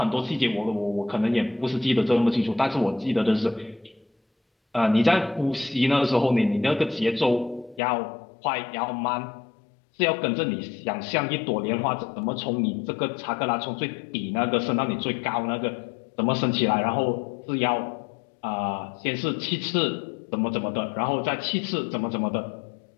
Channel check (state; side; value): drops out; right; at 7.8 s